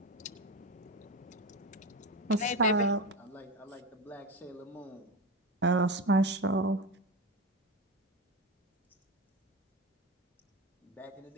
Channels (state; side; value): normal; both; correlation 0.21